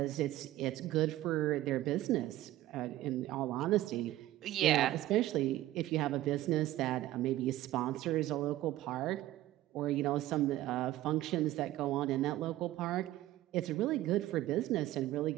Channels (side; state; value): left; quieter; 15.2 dB